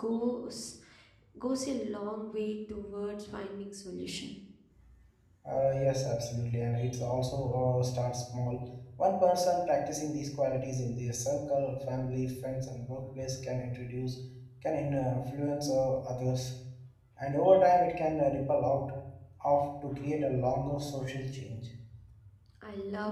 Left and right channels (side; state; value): both; identical; correlation 1.00